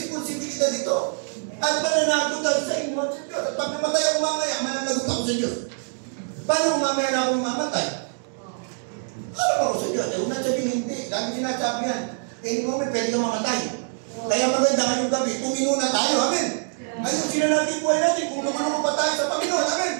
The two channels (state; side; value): silent; left; 61 dB below the other